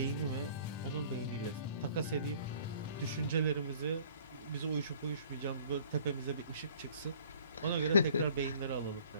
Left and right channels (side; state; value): both; inverted; correlation -0.53